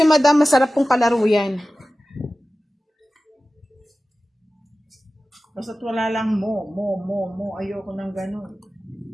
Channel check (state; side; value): normal; both; correlation 0.96